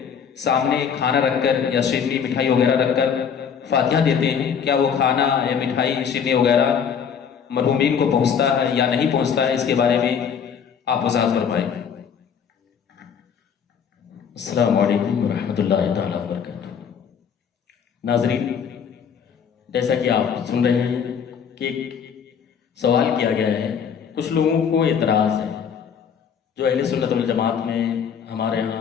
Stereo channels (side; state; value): right; quieter; 7.3 dB